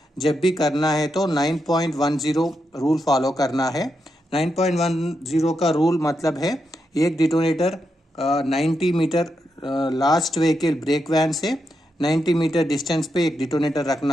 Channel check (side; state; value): both; normal; correlation 0.84